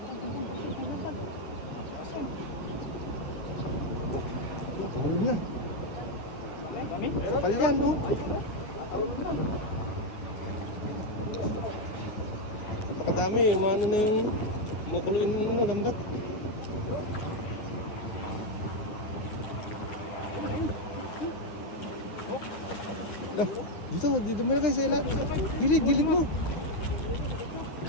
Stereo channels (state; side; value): late; right; 9.7 ms